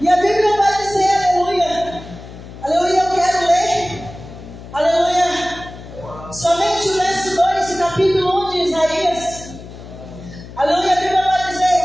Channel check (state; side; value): noise; left; hum, 15 dB below the sound